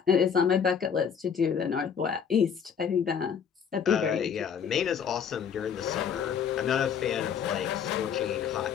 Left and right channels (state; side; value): quieter; right; 7.3 dB